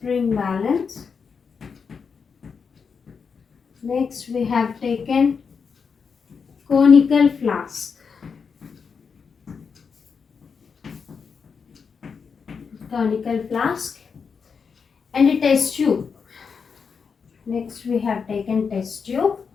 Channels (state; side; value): quieter; right; 5.8 dB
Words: balance. Next we have taken conical flask. Conical flask and a test tube. Next we have taken test tube.